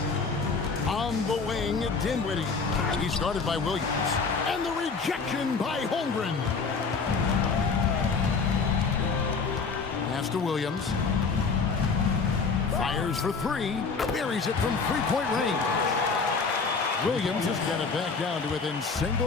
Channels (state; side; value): quieter; right; 4.8 dB